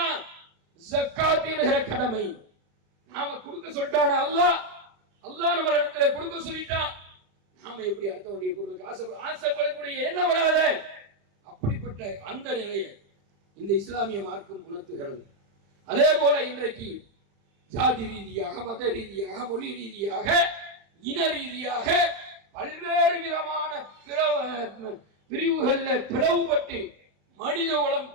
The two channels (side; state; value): left; late; 35 ms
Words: ஜக்காத் என்கிற கடமை. நாம கொடுக்க சொல்லிட்டான அல்லாஹ் நம்ம இடத்துல கொடுக்க சொல்லிட்டான், நாம எப்படி அடுத்தவருடைய பொருளுக்கு ஆசைப்படக்கூடிய எண்ணம் வராத. அப்படிப்பட்ட அந்த நிலையை இந்த இஸ்லாமிய மார்க்கம் உணர்த்துகிறது. அதே போல இன்றைக்கு ஜாதி ரீதியாக, மத ரீதியாக, மொழி ரீதியாக, இன ரீதியாக பல்வேறு விதமான பிரிவுகள்ல பிளவுபட்டு மனித குலம்